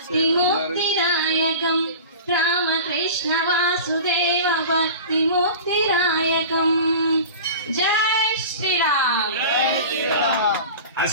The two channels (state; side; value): inverted; both; correlation -0.35